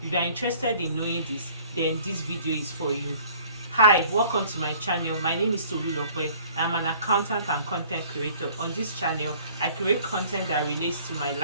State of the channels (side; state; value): both; inverted; correlation -0.53